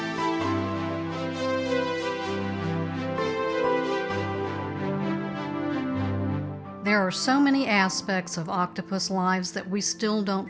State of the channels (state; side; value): identical; both; correlation 1.00